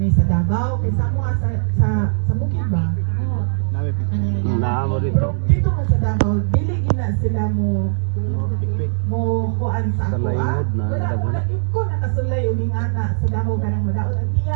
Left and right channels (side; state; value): left; silent; 61 dB below the other